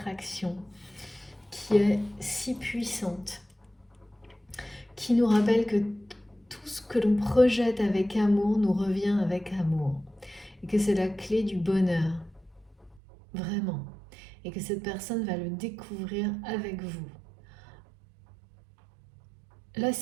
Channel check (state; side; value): drops out; left; at 13.0 s